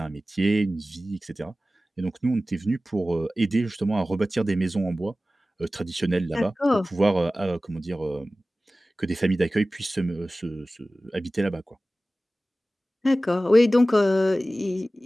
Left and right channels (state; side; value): normal; both; correlation 0.96